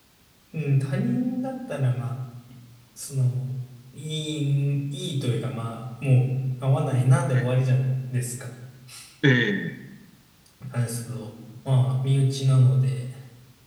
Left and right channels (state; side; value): identical; both; correlation 1.00